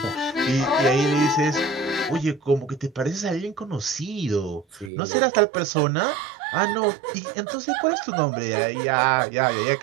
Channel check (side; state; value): left; drops out; at 4.9 s